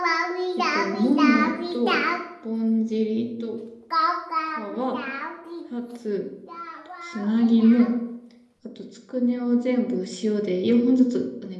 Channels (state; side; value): identical; both; correlation 1.00